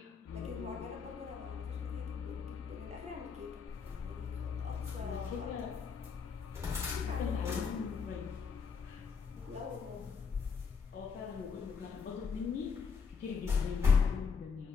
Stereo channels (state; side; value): quieter; right; 5.7 dB